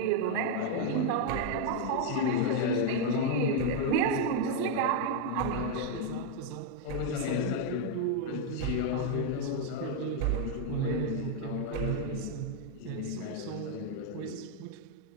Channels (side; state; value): both; different; correlation 0.01